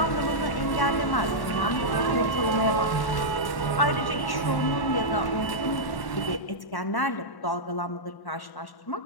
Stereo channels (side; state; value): right; late; 1.1 ms